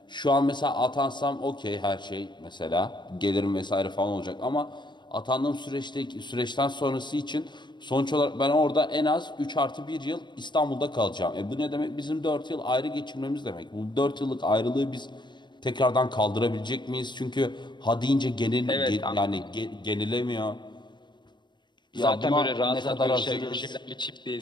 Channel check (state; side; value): late; right; 0.22 ms